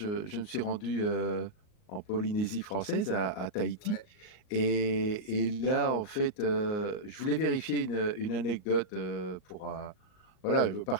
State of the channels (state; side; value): late; right; 38 ms